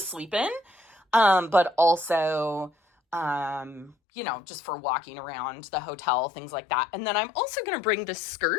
in, but also, just for walking around the hotel, things like that. And then I'm also going to bring this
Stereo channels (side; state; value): right; drops out; at 4.0 s